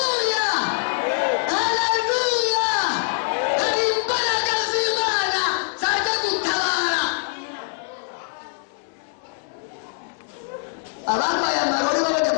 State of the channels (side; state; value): right; silent; digital silence